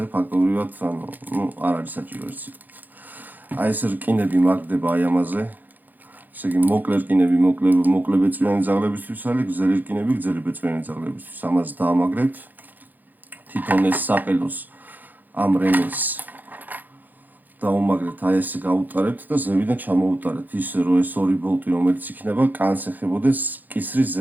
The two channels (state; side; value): late; left; 0.085 ms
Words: ფაქტობრივად, არ არის საჭირო ეს სიტყვა. აი ეს რკინები მაგდება აი ამაზე. ესე იგი, მოკლე რკინები მოკლე ბეწვიანი ძაღლებისთვის არის, გრძელი რკინები გრძელი ბეწვიანი ძაღლებისთვის. ამას დაამაგრებთ. თვითონ ეს საყელოს ამ რემეს დაუმაგრებთ, აი ესე გაუტარებთ და ზევიდან ჩამოუტარებთ, ისე რომ ეს ორი ბოლტი, რომელიც იქნება, კანს ეხებოდეს კისრის